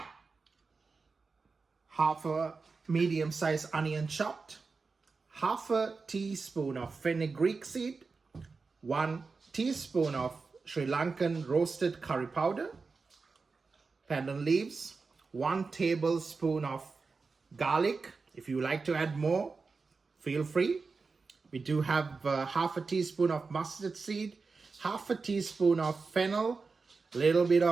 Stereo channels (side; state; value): left; quieter; 4.4 dB